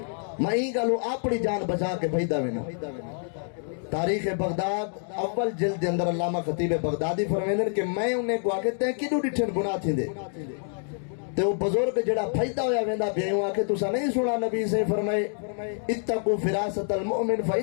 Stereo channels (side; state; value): right; silent; 59 dB below the other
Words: میں ہی گلو اپنی جان بچا کے بھجدا وینا۔ تاریخ بغداد اول جلد دے اندر علامہ خطیب بغدادی فرمیندن کہ میں انہیں کو آکے تے کدو ڈٹھن گناہ تھیندے، تے وہ بزرگ جڑا پھیدا ہویا ویندا بیوں آکے تسا نہیں سنا نبی سے فرمائے اتقوا فراست المؤمن